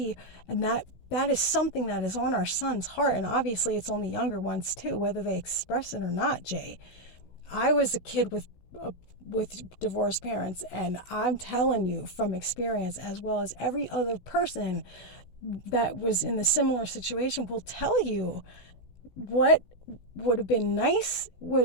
and that is something that is on our son's heart. And obviously it's on the younger ones too, whether they express it or not, Jay. I was a kid with divorced parents, and I'm telling you from experience, as well as every other person that was in the similar situation will tell you, what would have been nice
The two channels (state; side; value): late; right; 16 ms